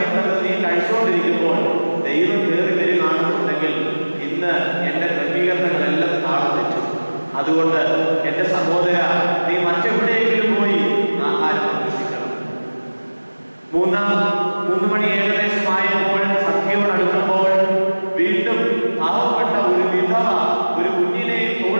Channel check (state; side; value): inverted; both; correlation -1.00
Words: നീ കഴിച്ചുകൊണ്ടിരിക്കുമ്പോൾ ദൈവം കയറി വരികയാണെന്നുണ്ടെങ്കിൽ ഇന്ന് എന്റെ ക്രമീകരണങ്ങളെല്ലാം താളം തെറ്റും. അതുകൊണ്ട് എന്റെ സഹോദര, നീ മറ്റെവിടെയെങ്കിലും പോയി ആഹാരം അന്വേഷിക്കണം. 3 മണി ഏകദേശമായപ്പോൾ സന്ധ്യയോടടുക്കുമ്പോൾ വീണ്ടും പാവപ്പെട്ട ഒരു വിധവ ഒരു കുഞ്ഞിനെ